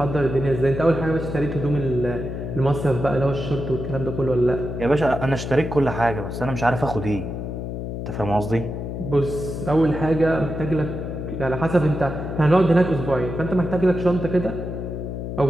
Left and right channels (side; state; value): left; noise; hum, 6 dB below the sound